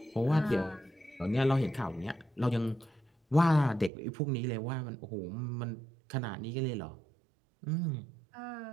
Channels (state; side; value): drops out; left; at 3.9 s